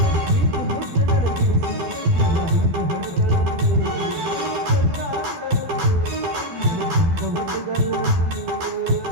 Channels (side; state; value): left; late; 12 ms